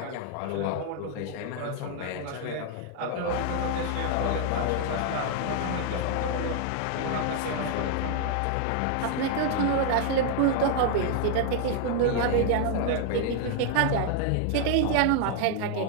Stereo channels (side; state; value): both; different; correlation 0.00